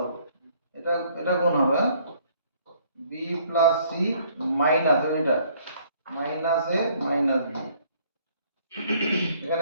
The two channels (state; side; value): inverted; both; correlation -0.62